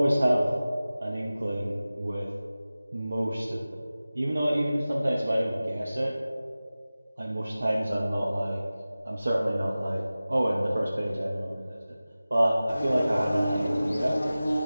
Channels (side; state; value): both; inverted; correlation -0.97